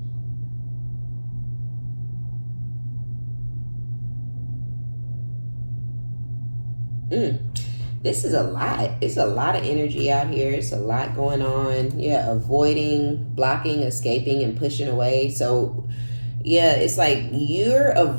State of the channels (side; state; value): both; inverted; correlation -1.00